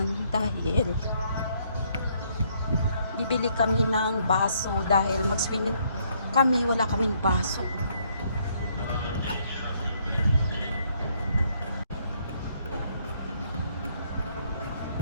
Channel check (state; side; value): inverted; both; correlation -0.69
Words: dahil bibili kami ng baso dahil mag-swimming kami, wala kaming baso.